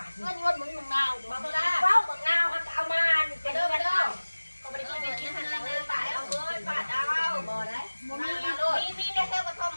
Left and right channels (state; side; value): inverted; both; correlation -1.00